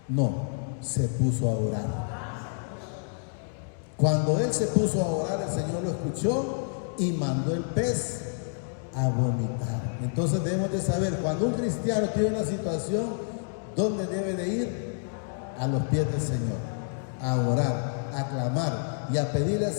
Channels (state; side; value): silent; right; digital silence